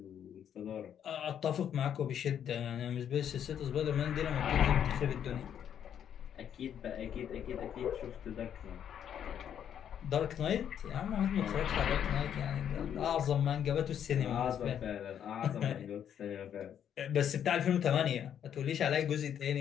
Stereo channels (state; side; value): quieter; right; 9.2 dB